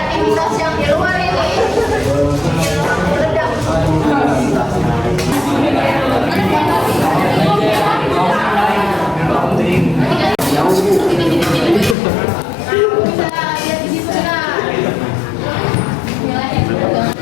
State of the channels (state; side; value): drops out; right; at 12.0 s